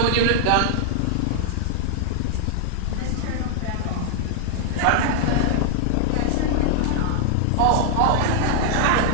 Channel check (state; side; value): different; both; correlation -0.01